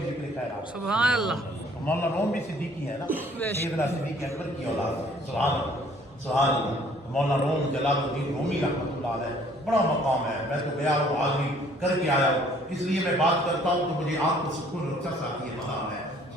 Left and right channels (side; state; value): both; normal; correlation 0.59